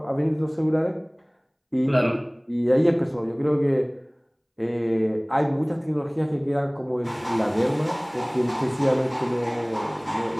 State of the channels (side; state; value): both; identical; correlation 1.00